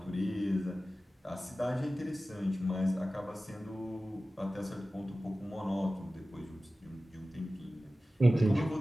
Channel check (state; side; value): normal; both; correlation 0.96